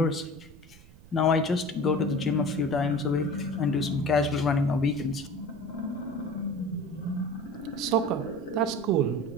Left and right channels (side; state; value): right; noise; rumble, 22 dB below the sound